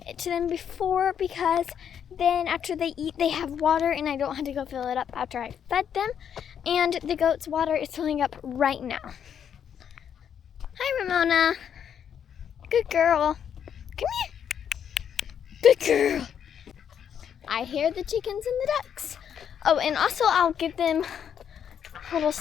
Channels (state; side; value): quieter; right; 8.5 dB